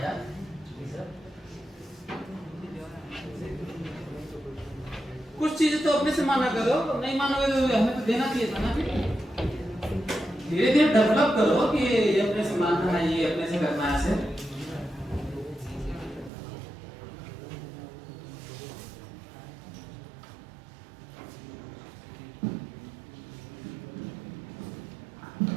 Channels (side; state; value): left; drops out; at 16.3 s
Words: यार। कुछ चीजें तो अपने से माना करो, नहीं मानोगे तो हमें तो देना चाहिए था ना। फिर धीरे धीरे डेवलप करो कि ये अपने से मानना है, ये अपने से करना है। ऐसे